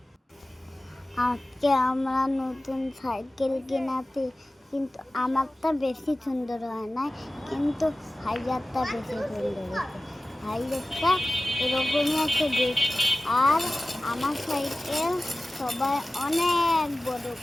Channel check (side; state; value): both; normal; correlation 0.97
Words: আজকে আমরা নতুন সাইকেল কিনেছি, কিন্তু আমারটা বেশি সুন্দর হয় না, কিন্তু ভাইয়ারটা বেশি সুন্দর হয়েছে। ভাইয়ারটা এরকমই আছে আর আমার সাইকেল সবাই অনেক বড়